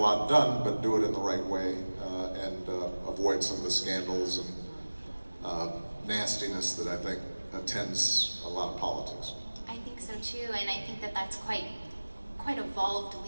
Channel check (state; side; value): inverted; both; correlation -1.00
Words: done, but do it in the right way and avoid some of the scandals and nastiness that I think attends a lot of politics. I think so too, and I think that that's quite evolved